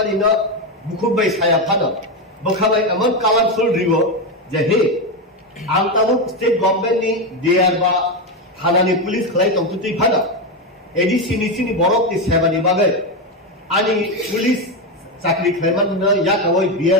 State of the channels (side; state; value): both; normal; correlation 0.11